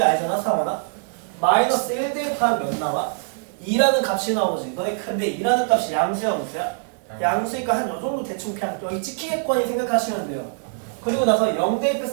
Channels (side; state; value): left; silent; digital silence